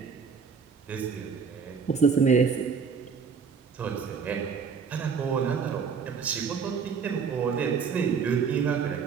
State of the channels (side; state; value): left; quieter; 6.0 dB